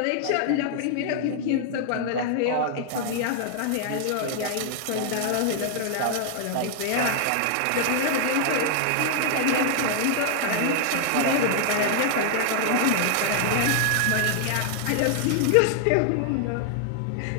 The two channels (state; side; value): different; both; correlation 0.00